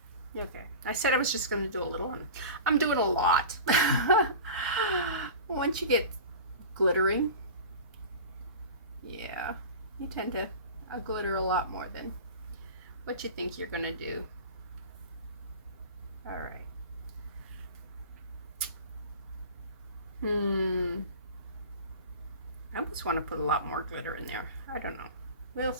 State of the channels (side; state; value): both; inverted; correlation -0.34